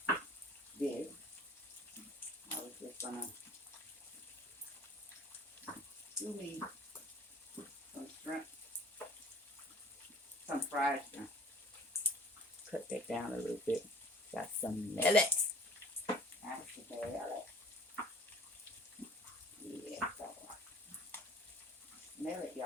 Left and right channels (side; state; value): both; normal; correlation 0.49